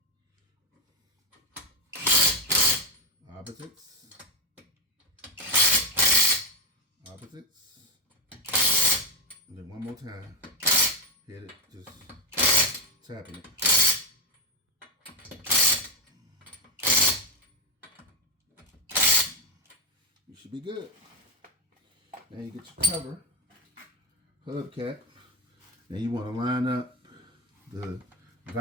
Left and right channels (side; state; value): both; normal; correlation 0.10